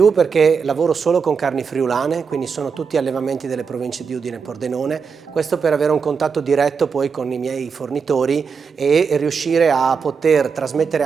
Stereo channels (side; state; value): left; quieter; 5.8 dB